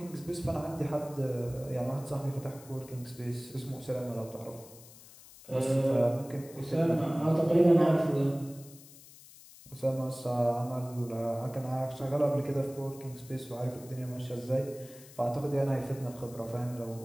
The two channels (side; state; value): left; noise; hiss, 20 dB below the sound